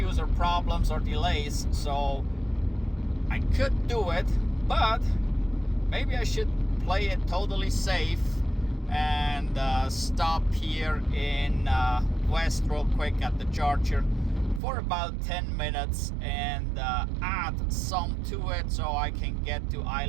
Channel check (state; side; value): drops out; left; at 14.6 s